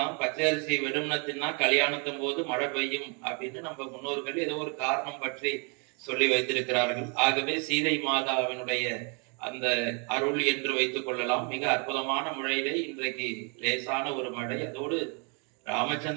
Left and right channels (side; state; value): left; quieter; 35.6 dB